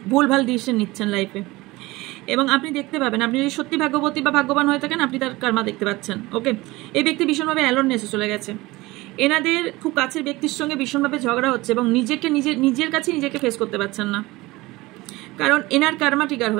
ভুলভাল ডিসিশন নিচ্ছেন লাইফে, এবং আপনি দেখতে পাবেন, আপনি যদি সত্যি ভাগ্যবতী বা ভাগ্যবান হয়ে থাকেন, আপনি তার কার্মা দেখতে পাচ্ছেন। ওকে, এই ব্যক্তি ভীষণভাবে অ্যালোননেসে চলে গেছে। এনাদের খুব কাছের ব্যক্তির সঙ্গে ভীষণভাবে ঝগড়া হচ্ছে এবং নিজের কাছে নিজেকে ফেস করতে পারছেন না, কারণ এনার কার্মা ট্রিগার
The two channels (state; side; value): quieter; left; 20.6 dB